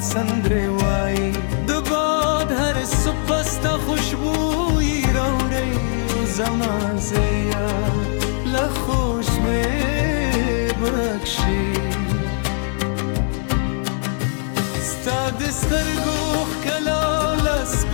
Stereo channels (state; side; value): silent; right; 59 dB below the other